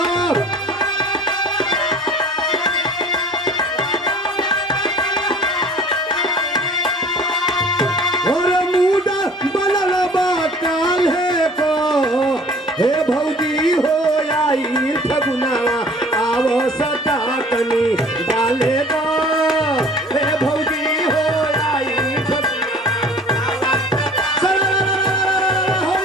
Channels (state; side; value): normal; both; correlation 0.47